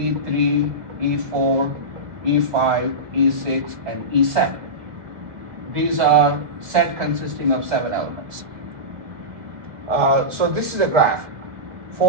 E4, E5, E6, and E7. These are set consisting of 7 elements. So this is a graph.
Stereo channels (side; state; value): left; late; 1.4 ms